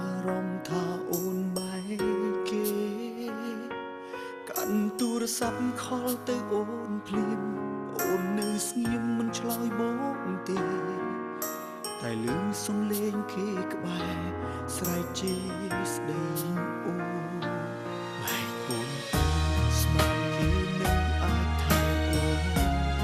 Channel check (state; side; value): identical; both; correlation 1.00